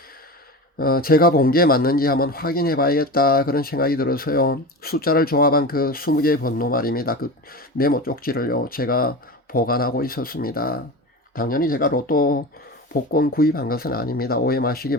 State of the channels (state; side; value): normal; both; correlation 0.28